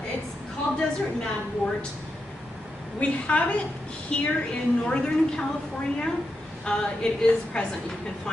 It's called desert madwort. We have it here in Northern California. It is present. You can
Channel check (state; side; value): normal; both; correlation 0.86